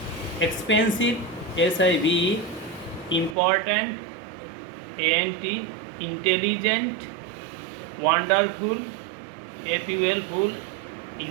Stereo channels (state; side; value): drops out; left; at 3.4 s